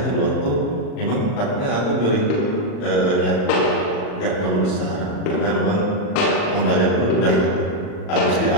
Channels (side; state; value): right; late; 39 ms